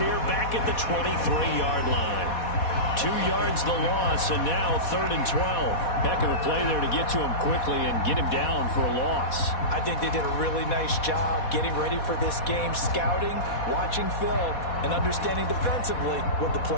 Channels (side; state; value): right; late; 4.1 ms